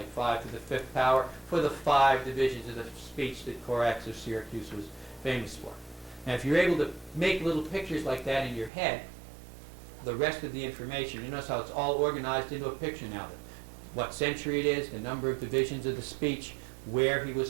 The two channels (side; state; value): left; drops out; at 8.7 s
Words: 5 to the 5th power, for the 5 divisions of the speech that Corax of Syracuse was famous for. Now, if you're able to make little pictures like that in your head, the rest of the information, you notice how it's all organized into a picture now. What century it is, the number of divisions of the speech, where he was